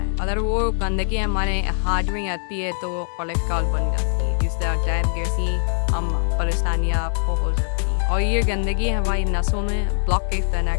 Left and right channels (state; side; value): silent; right; digital silence